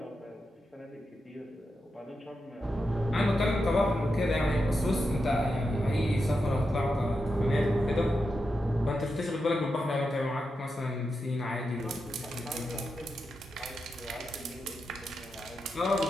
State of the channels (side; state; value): both; normal; correlation 0.88